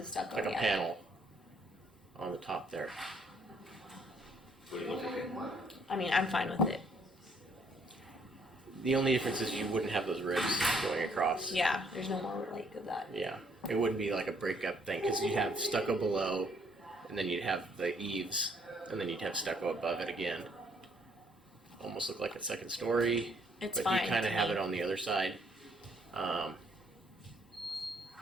stucco. like a yeah. panel on the top there. Would it look okay? I mean, I'm fine with it. The only difference is you wouldn't have those ribs going across. Yeah, there's no more like of that. Yeah, it wouldn't be like a breakup thing because you'd have stucco below, and then you'd have the eaves, and then you'd have stucco above it again. Almost look like a second story, It's but fine. you kind to of have me. it on the other side.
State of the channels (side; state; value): both; normal; correlation 0.66